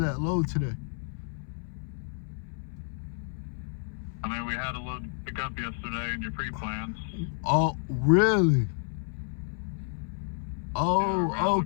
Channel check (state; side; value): silent; right; 58 dB below the other